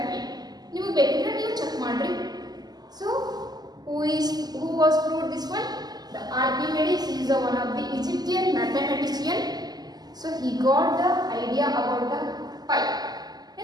way. ನೀವು ಬೇಕಿದ್ರೆ ನೀವು check ಮಾಡ್ರಿ. So who was proved this one? The Archimedes is one of the Egyptian mathematician. So he got the idea about the pi.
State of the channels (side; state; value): left; late; 0.20 ms